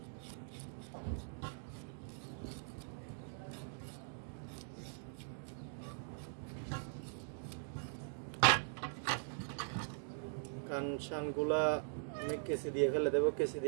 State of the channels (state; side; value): silent; left; digital silence